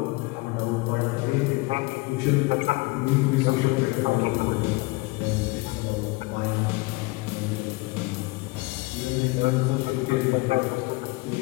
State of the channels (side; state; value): right; quieter; 23.9 dB